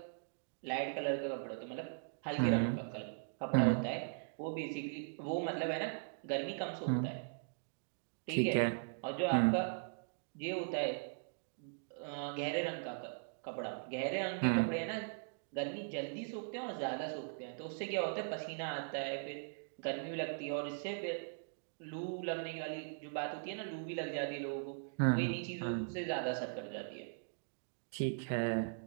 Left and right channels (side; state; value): left; silent; digital silence